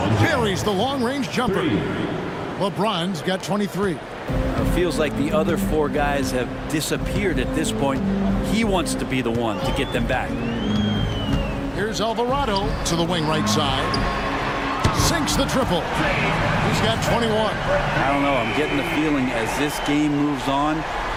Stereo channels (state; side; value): identical; both; correlation 1.00